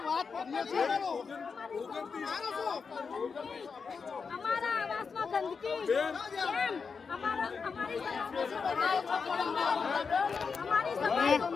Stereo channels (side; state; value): right; quieter; 5.4 dB